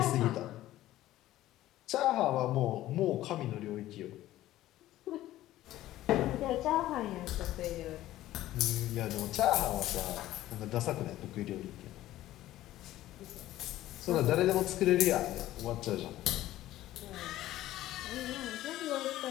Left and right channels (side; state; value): right; quieter; 14.8 dB